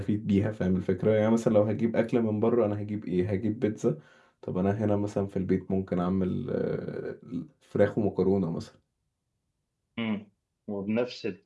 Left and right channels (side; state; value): both; identical; correlation 1.00